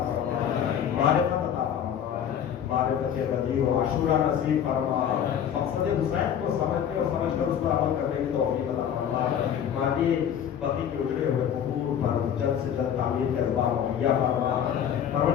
فرما معرفت عطا فرما معرفت غدیر و عاشورہ نصیب فرما مقصد حسین کو سمجھنے اور سمجھ کر اس پر عمل کرنے کی توفیق عطا فرما مالی بقی کے اجڑے ہوئے قبور پر جلد سے جلد تعمیر کے اسباب مہیا فرما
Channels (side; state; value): right; quieter; 9.1 dB